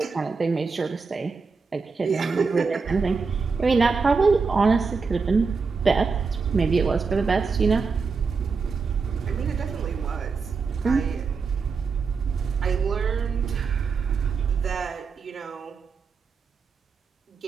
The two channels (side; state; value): left; quieter; 4.9 dB